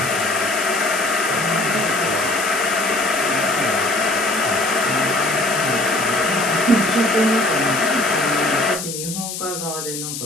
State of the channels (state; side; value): noise; left; hiss, 7 dB below the sound